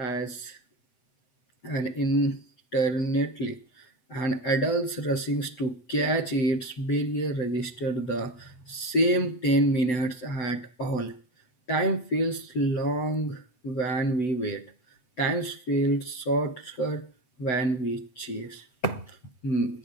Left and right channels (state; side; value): late; right; 7.9 ms